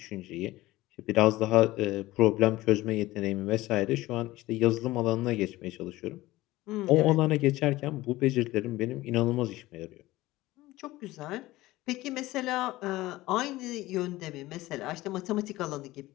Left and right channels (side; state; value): right; quieter; 18.0 dB